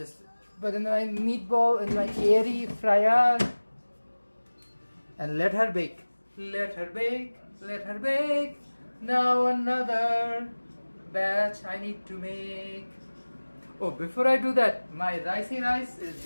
put in my meatball in my airy fryer and let her bake. Let her bake, let her bake. Now another batch I need to make. Oh, before I do that, my ricey rice is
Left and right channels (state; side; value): inverted; both; correlation -1.00